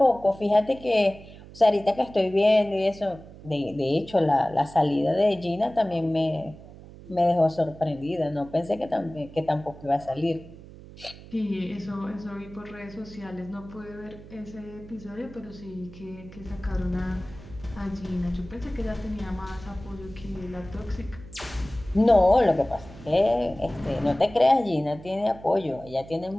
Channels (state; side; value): noise; right; hum, 18 dB below the sound